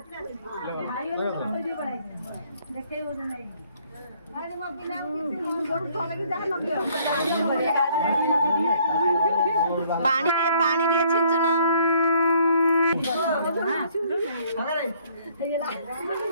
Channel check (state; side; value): inverted; both; correlation -0.62